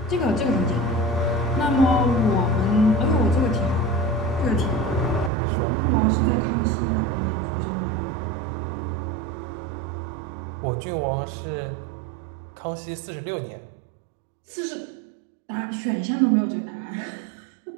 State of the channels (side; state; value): left; drops out; at 5.3 s